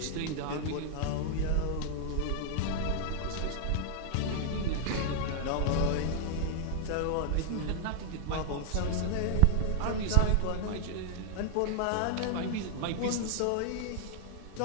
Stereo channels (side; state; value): both; different; correlation 0.00